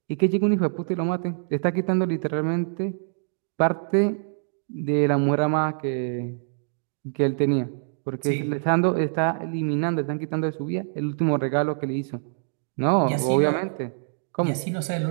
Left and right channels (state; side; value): silent; left; digital silence